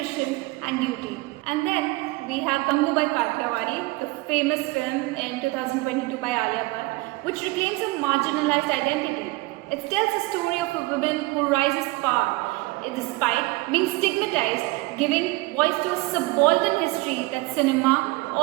and duty. And then we have Gangubai Kathiawadi, the famous film in 2022 by Alia Bhatt, which reclaims a marginalized identity. It tells a story of a woman who rises to power despite being stigmatized, giving voice to a subaltern history that cinema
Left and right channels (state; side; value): quieter; left; 22.7 dB